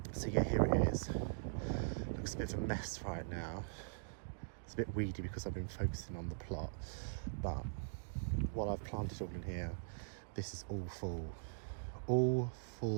So yeah, here it is. Looks a bit of a mess right now. It's a bit weedy because I've been focusing on the plot, but while I've planted all in here, this is all full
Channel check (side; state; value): left; silent; digital silence